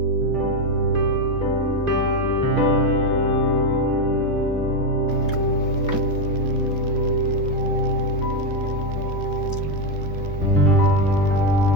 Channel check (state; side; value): normal; both; correlation 0.08